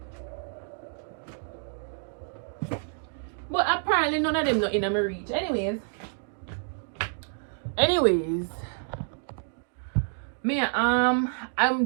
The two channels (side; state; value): left; silent; digital silence